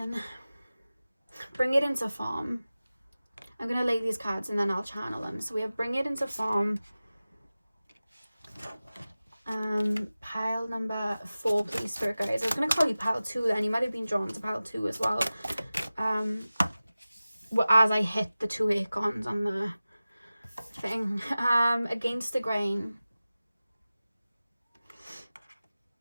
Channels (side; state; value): both; inverted; correlation -0.96